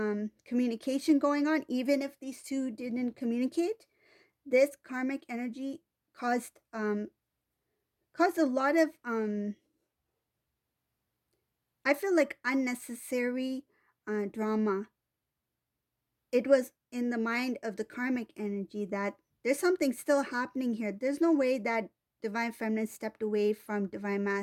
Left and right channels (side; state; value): both; identical; correlation 1.00